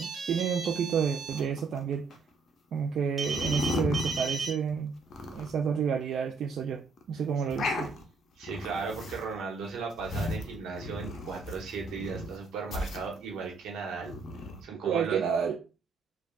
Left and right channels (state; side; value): quieter; left; 4.4 dB